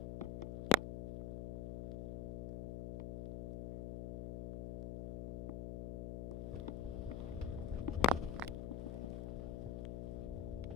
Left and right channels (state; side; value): noise; left; hum, 2 dB below the sound